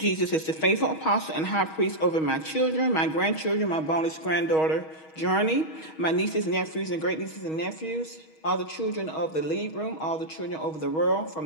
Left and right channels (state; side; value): late; right; 6.3 ms